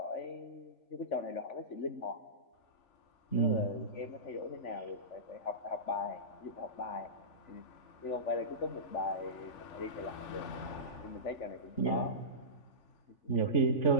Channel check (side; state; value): right; late; 3.5 ms